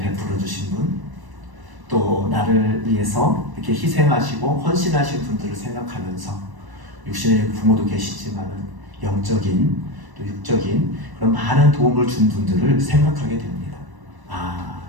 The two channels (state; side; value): late; left; 1.0 ms